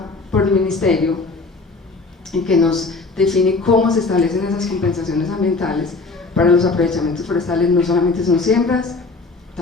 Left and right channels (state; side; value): quieter; right; 3.8 dB